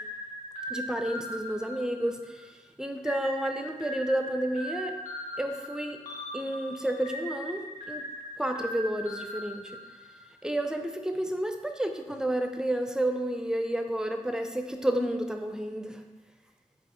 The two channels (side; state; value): both; normal; correlation 0.84